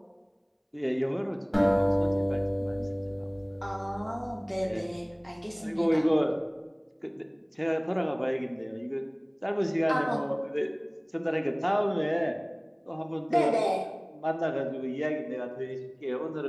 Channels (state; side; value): identical; both; correlation 1.00